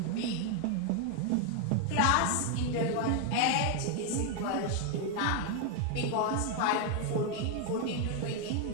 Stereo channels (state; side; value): different; both; correlation 0.01